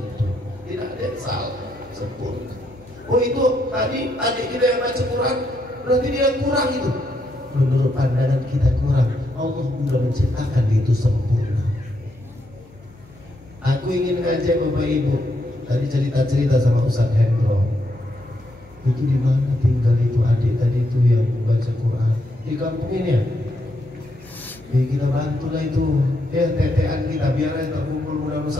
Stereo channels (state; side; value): noise; left; hum, 25 dB below the sound